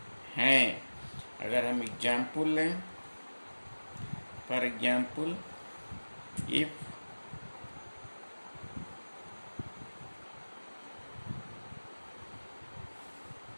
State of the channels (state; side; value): inverted; both; correlation -1.00